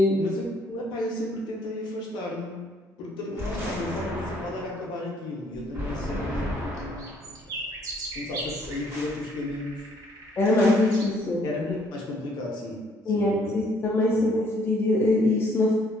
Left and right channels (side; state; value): both; normal; correlation 0.64